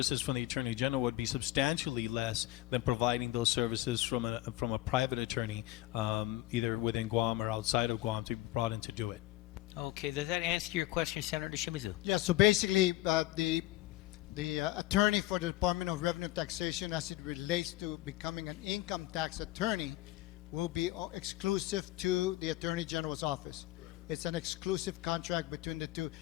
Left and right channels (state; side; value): quieter; right; 16.5 dB